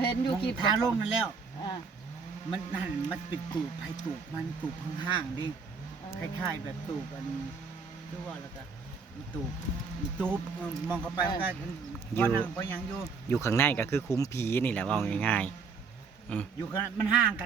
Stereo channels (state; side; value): quieter; left; 5.1 dB